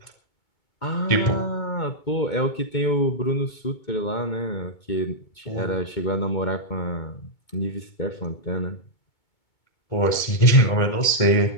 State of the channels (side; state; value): right; late; 2.2 ms